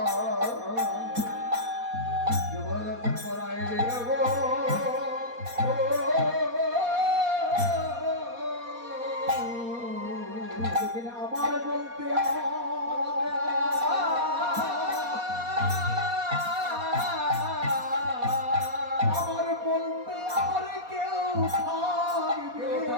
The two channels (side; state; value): left; late; 4.2 ms